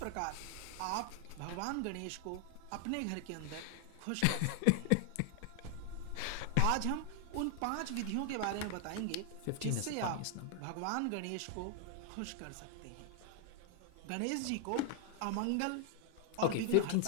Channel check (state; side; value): different; both; correlation 0.00